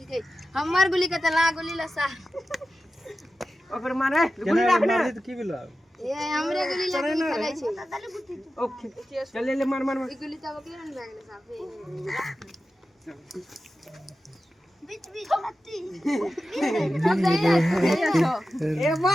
गई हमर गोली के तला गोली लसा ओकर मारे गोली राखने मारी तो की भेलो ए हमरे गोली लगी खेलै छै ओके चल ले मार मार ई गोली तब के रन लागले साफे बीच बीच लत्ती ए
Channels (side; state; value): both; normal; correlation 0.93